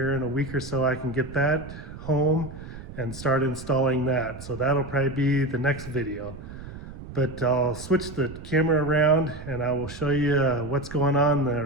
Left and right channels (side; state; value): right; noise; rumble, 13 dB below the sound